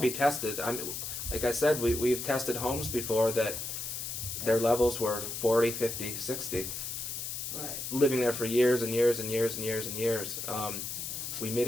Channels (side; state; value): left; noise; hiss, 5 dB below the sound